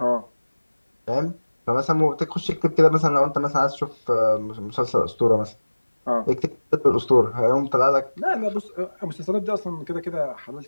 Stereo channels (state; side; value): inverted; both; correlation -1.00